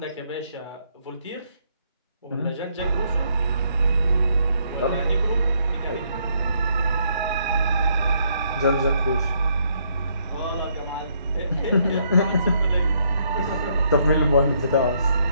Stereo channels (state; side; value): inverted; both; correlation -0.71